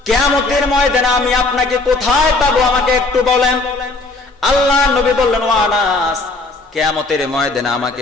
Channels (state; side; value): quieter; right; 3.3 dB